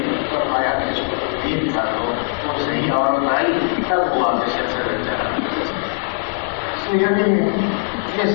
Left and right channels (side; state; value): right; silent; digital silence